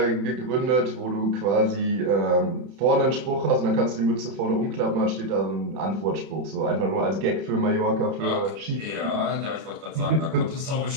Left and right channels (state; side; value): late; left; 31 ms